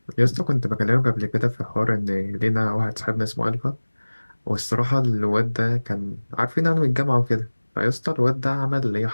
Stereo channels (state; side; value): inverted; both; correlation -1.00